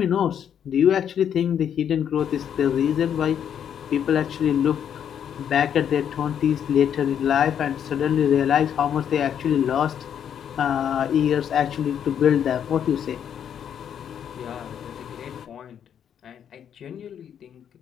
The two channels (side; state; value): right; quieter; 8.8 dB